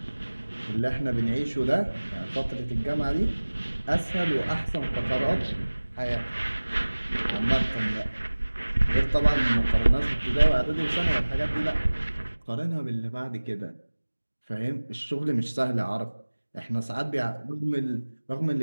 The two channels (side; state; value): both; inverted; correlation -1.00